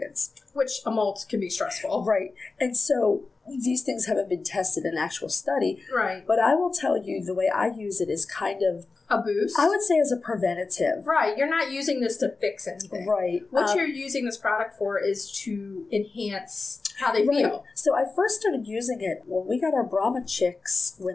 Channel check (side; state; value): right; quieter; 3.9 dB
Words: Which a molt can be stressful. Right. And so these things haven't been tested in actual study. Right. But I will tell you the way I use it is kind of a boost? I would say as a preventative. Right. You're not using this to fix anything. Right. What you're using this product for is to enhance how they feel. So I first started using it when we got our Brahma chicks.